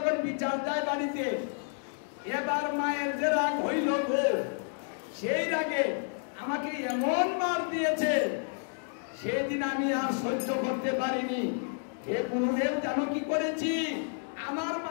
বিচার যায় বাড়িতে, এবার মায়ের যে রাগ হইল গো, সেই রাগে আমাকে এমন মার দিয়েছে, সেদিন আমি আর সহ্য করতে পারিনি। হে গুরুদেব, জানো কি করেছি? আমার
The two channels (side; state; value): right; silent; 57 dB below the other